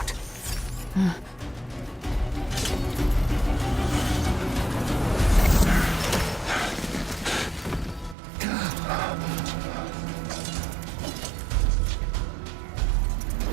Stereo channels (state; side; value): drops out; left; at 8.2 s